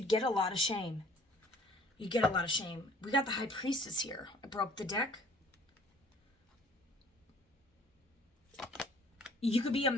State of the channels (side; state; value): both; normal; correlation 0.54